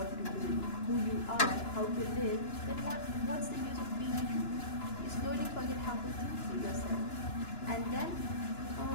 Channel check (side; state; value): right; late; 2.9 ms